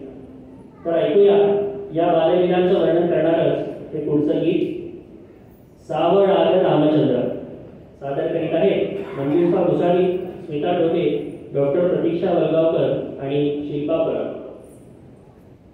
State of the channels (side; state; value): both; identical; correlation 1.00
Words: तर ऐकूया या बाललीलांचं वर्णन करणारच हे पुढचं गीत. सावळ आलं रामचंद्र. सादर करीत आहे मंजुषा भुसारी, स्मिता डोके, डॉक्टर प्रतीक्षा वलगावकर आणि शिल्पा पराग.